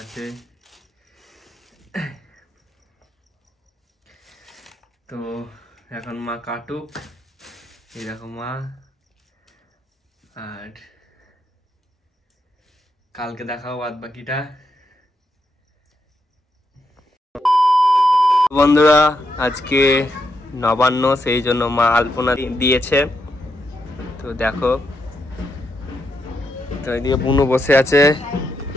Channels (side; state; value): both; normal; correlation 0.82